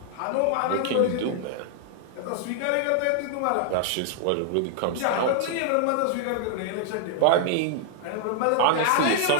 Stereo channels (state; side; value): different; both; correlation 0.00